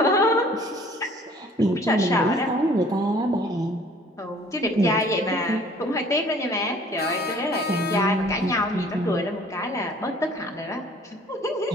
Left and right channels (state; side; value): normal; both; correlation 0.54